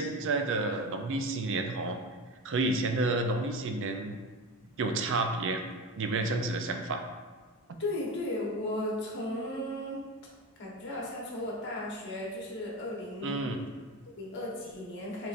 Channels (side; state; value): both; normal; correlation 0.25